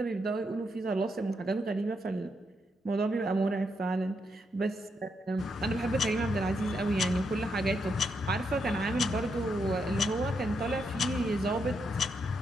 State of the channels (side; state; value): both; normal; correlation 0.80